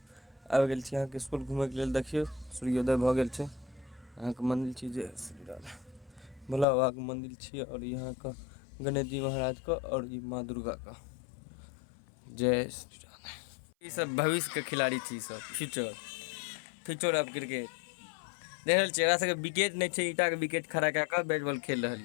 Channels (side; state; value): right; drops out; at 6.7 s